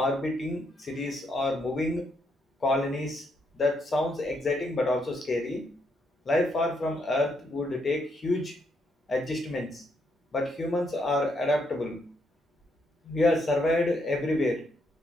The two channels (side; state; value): both; normal; correlation 0.76